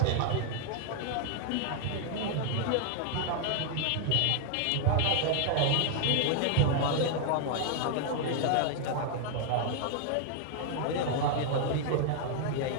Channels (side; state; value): both; different; correlation 0.00